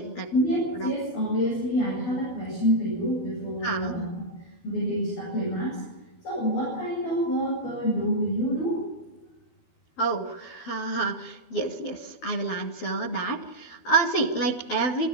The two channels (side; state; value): right; late; 12 ms